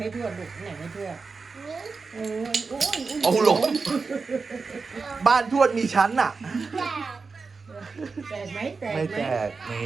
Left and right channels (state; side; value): quieter; left; 4.6 dB